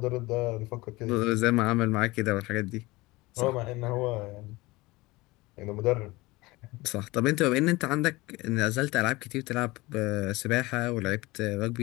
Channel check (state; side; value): quieter; right; 21.5 dB